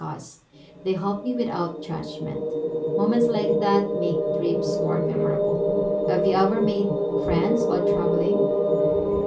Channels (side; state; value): both; identical; correlation 1.00